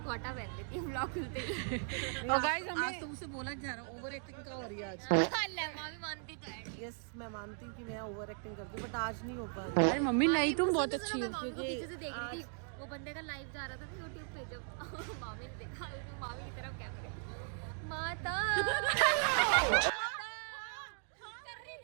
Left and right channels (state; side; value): silent; left; 53 dB below the other